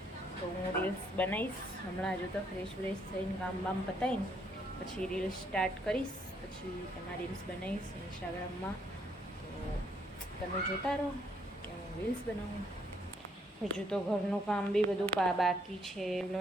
તો હું રીલ્સ બનાવીશ હમણાં. હજુ તો ફ્રેશ થઈને કામ પતાવીને પછી રીલ્સ સ્ટાર્ટ કરીશ. પછી તેમાં રીલ્સ બનાવીશ ઇન્સ્ટાગ્રામમાં. તો તમે જોતા રહો કે હું રીલ્સ બનાવું. હજુ તો ઘરનું કામ બી બધું બાકી છે.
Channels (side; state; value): both; normal; correlation 0.70